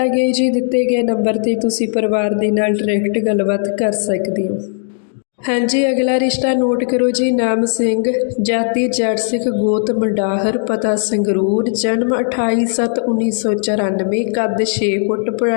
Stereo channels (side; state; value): right; silent; 67 dB below the other